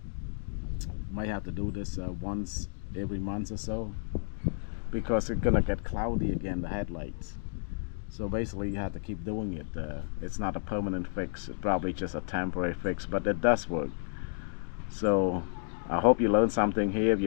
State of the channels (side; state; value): right; silent; digital silence